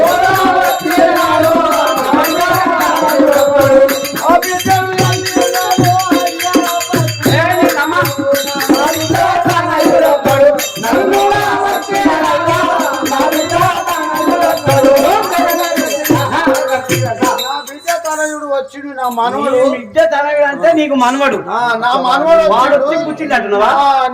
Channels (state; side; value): identical; both; correlation 1.00